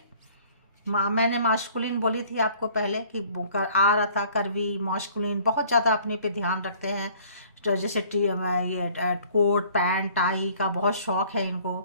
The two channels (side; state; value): both; inverted; correlation -0.54